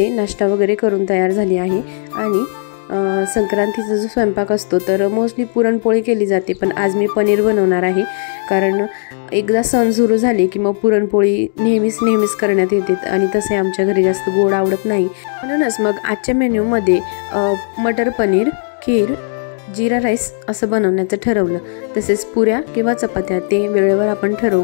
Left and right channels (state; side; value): silent; right; digital silence